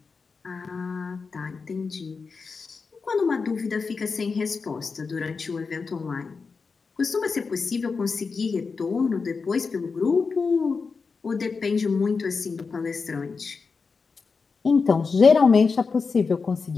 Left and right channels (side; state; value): right; quieter; 4.8 dB